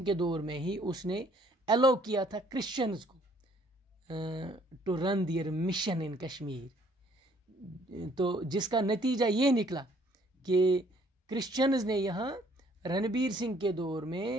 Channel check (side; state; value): both; normal; correlation 0.62